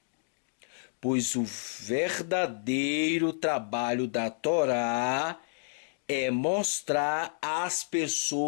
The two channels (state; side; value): silent; right; digital silence